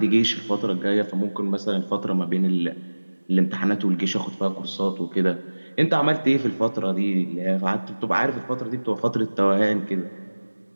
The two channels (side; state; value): both; inverted; correlation -1.00